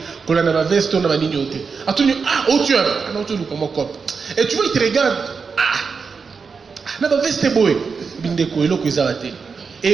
qu'on a ma veste, on a ma lignoté. Attendu, oh, tu as. Non, tu nous comme cop. Et tu vois, il te regarde. Na ma veste boy. Bindeko, et l'autre, ils arrêtent. Et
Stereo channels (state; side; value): quieter; left; 5.3 dB